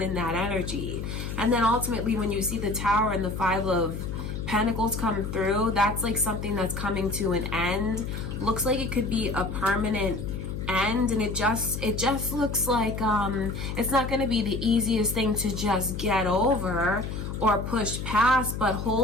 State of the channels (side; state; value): left; noise; hum, 5 dB below the sound